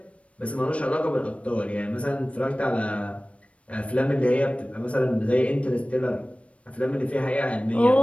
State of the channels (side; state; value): right; late; 0.063 ms